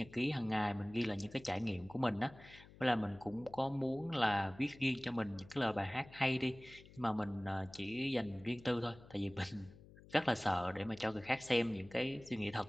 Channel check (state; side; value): noise; left; hum, 21 dB below the sound